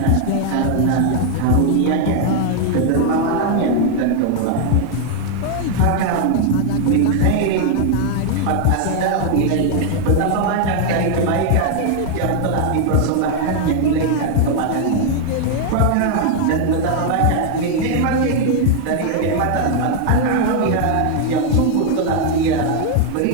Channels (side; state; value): both; different; correlation 0.00